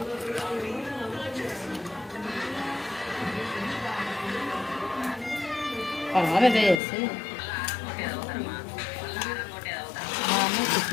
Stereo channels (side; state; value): right; drops out; at 6.8 s